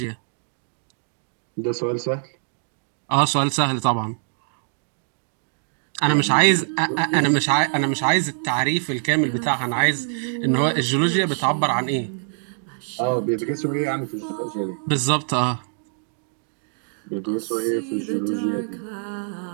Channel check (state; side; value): silent; left; digital silence